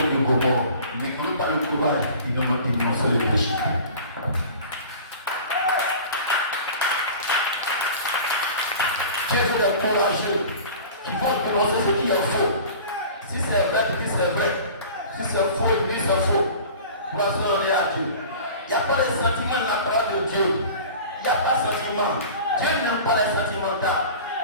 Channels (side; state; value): both; inverted; correlation -0.40